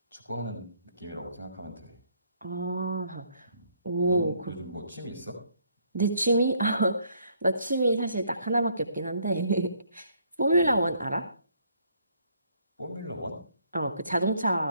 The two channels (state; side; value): inverted; both; correlation -0.67